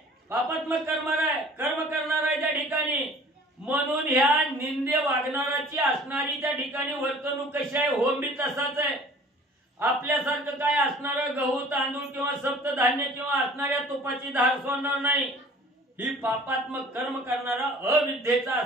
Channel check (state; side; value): normal; both; correlation 0.49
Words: पापात्मक कर्म करणार आहे त्या ठिकाणी. म्हणून ह्या निंदे वागणाराची असणारी त्या ठिकाणी वर्तणूक कशी आहे, होम बी तसाच आहे. आपल्यासारखं काय असणारं गहू तांदूळ किंवा सप्तधान्य किंवा असणाऱ्या तुपाची धार सोडणार नाही. ही पापात्मक कर्म करणारा अविद्येचा